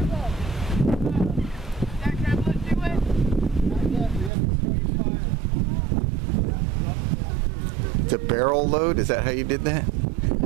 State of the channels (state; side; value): drops out; left; at 4.3 s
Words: that tablet do it? It's a barrel load? Is that how you did that?